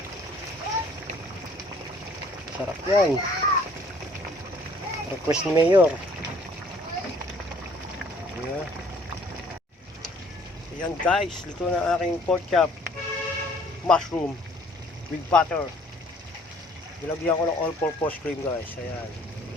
Sarap yan. Request ni Mayor. Ayan. Ayan guys, luto na aking pork chop. Mushroom with butter. Nilagyan ko ng all-purpose cream guys. Ayan.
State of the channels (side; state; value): both; normal; correlation 0.58